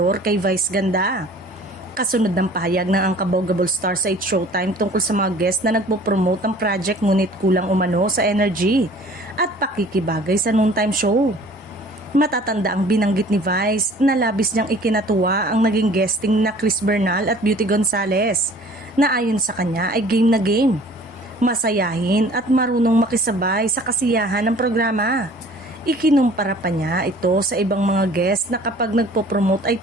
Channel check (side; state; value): both; normal; correlation 0.50